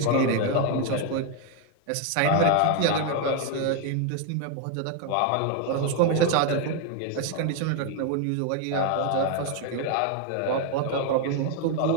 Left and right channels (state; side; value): different; both; correlation 0.01